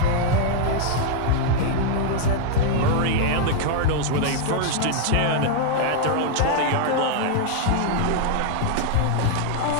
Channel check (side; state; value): both; different; correlation 0.00